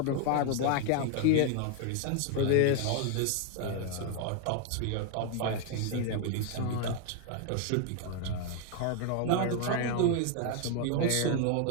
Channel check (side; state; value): both; different; correlation 0.01